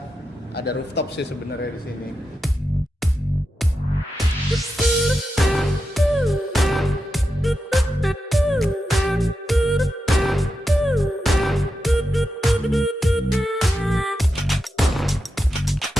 ada rooftop sih sebenarnya di sini.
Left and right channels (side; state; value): both; normal; correlation 0.88